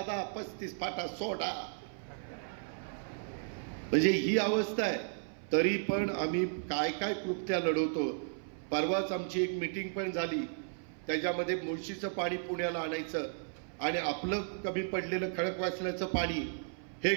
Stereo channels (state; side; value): silent; left; 55 dB below the other